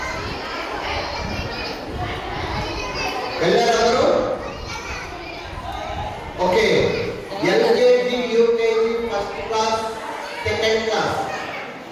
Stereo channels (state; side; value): identical; both; correlation 1.00